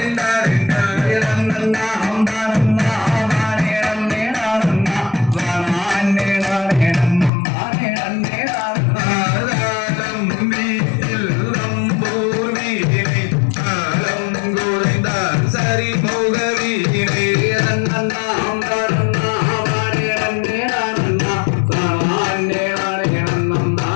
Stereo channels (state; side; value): drops out; right; at 7.3 s